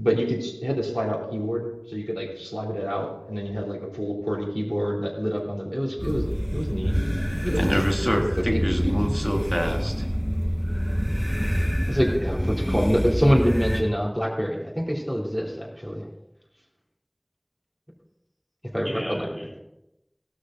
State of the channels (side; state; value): both; identical; correlation 1.00